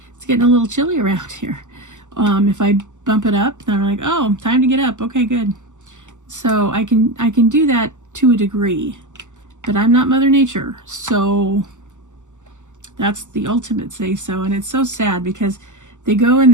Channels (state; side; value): late; left; 0.85 ms